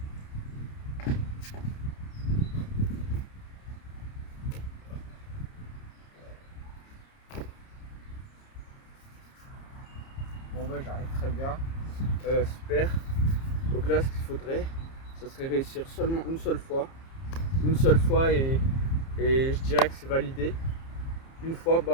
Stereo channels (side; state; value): right; late; 30 ms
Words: Bon bah j'arrive très bien. Super. Donc là ce qu'il faudrait, ça serait réussir seulement une seule fois. Une seule fois et je dirais que c'est validé. Une fois,